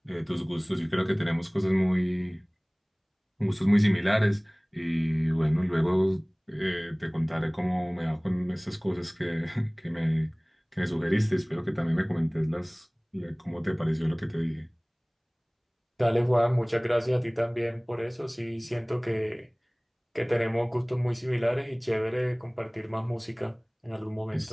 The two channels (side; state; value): both; identical; correlation 1.00